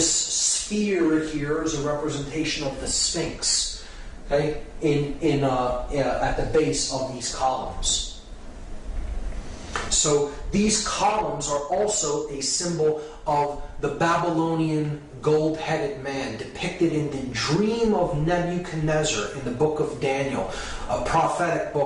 sphere here is a representation of the Sphinx, okay, at the base of these columns. So these columns are also a symbol of the Babylonian gold-headed man depicted in the dream of Nebuchadnezzar in the book of Daniel, a prophetic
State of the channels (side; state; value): both; identical; correlation 1.00